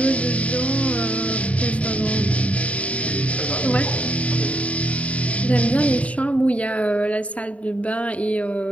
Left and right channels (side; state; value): right; late; 0.066 ms